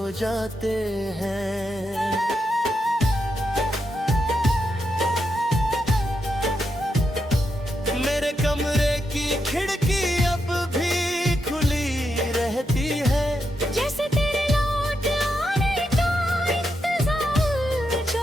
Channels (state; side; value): normal; both; correlation 0.84